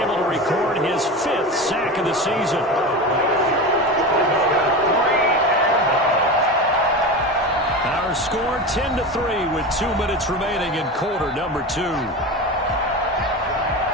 able to record his 5th sack of the season. Our score 10-3 with 2 minutes remaining in quarter number 2.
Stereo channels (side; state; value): both; normal; correlation 0.26